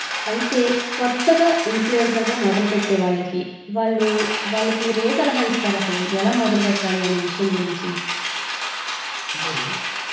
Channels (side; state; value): both; identical; correlation 1.00